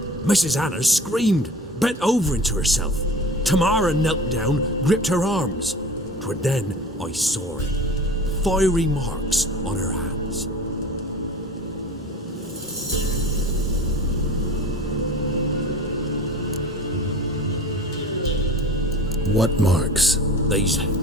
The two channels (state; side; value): normal; both; correlation 0.39